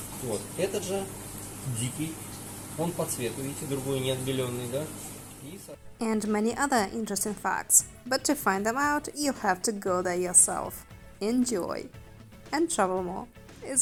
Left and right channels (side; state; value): both; identical; correlation 1.00